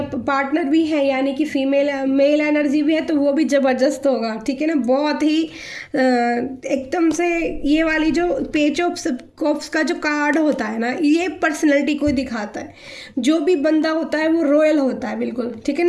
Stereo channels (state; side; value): identical; both; correlation 1.00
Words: पार्टनर भी है यानी कि फीमेल मेल एनर्जी भी है तो वो भी ज़बरदस्त होगा, ठीक है ना। बहुत ही एकदम से ये वाली जो पेज ऑफ कप्स का जो कार्ड होता है ना, ये पर्सनैलिटी को दिखाता है। जो भी बंदा होता है वो रॉयल होता है बिल्कुल, ठीक है